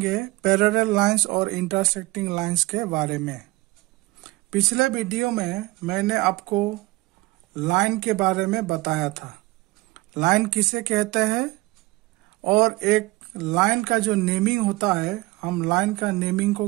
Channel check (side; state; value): left; quieter; 21.1 dB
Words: पैरेलल लाइंस और इंटरसेक्टिंग लाइंस के बारे में। पिछले वीडियो में मैंने आपको लाइन के बारे में बताया था। लाइन किसे कहते हैं और एक लाइन का जो नेमिंग होता है, हम लाइन का नेमिंग को